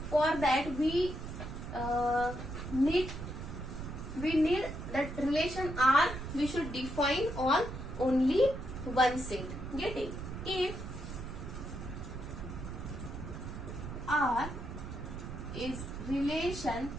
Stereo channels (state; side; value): noise; right; rumble, 8 dB below the sound